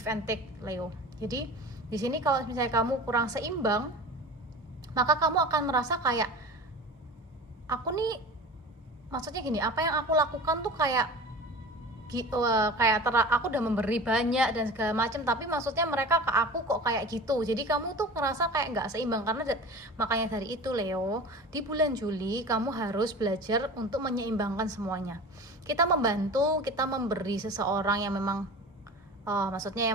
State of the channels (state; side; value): normal; both; correlation 0.36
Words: and take Leo. Jadi di sini kalau misalnya kamu kurang seimbang, maka kamu akan merasa kayak aku nih, maksudnya gini, apa yang aku lakukan tuh kayak aku udah memberi banyak dan segala macam, tapi maksudnya mereka ke aku kok kayak gitu. Jadi kamu tuh ngerasa kayak nggak seimbang. Karena makanya dari itu Leo, di bulan Juli kamu harus belajar untuk menyeimbangkan semuanya. Kita membantu, kita memberi seseorang yang memang maksudnya